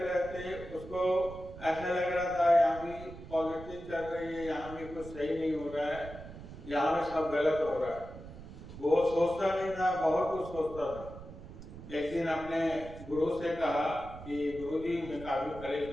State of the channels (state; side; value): noise; right; rumble, 14 dB below the sound